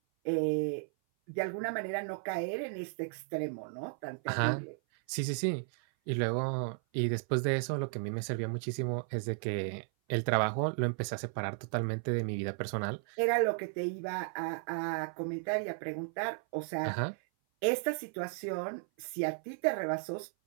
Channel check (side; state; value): left; silent; 55 dB below the other